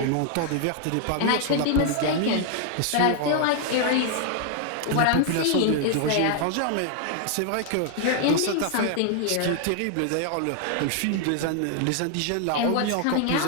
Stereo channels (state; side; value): different; both; correlation 0.00